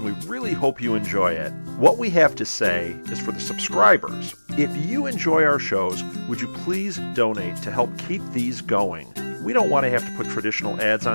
we really hope you enjoy it. What we have to say is for the subscribers. If you enjoy our shows, would you please donate to help keep these going? We don't want to have to put traditional ads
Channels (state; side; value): inverted; both; correlation -1.00